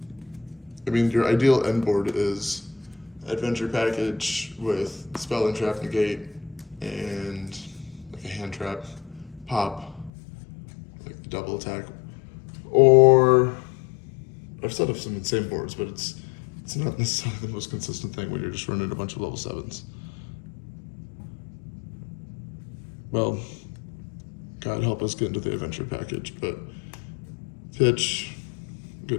I mean, your ideal end board is adventure package with spell and trap negate and like a hand trap, pop, like double attack, or I've set up some insane boards, but it's not necessarily the most consistent thing when you're just running a bunch of level 7s. Well, God help us get into the adventure package, but pitch,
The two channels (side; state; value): right; drops out; at 10.1 s